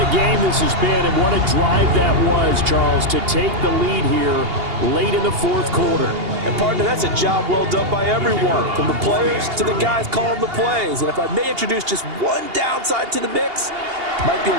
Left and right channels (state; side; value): late; left; 2.8 ms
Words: game this has been, and what a drive that was, Charles, to take the lead here late in the fourth quarter. And, partner, that's a job well done by everyone, from the players to the guys calling the plays. And if I may introduce just one downside to the mix, might be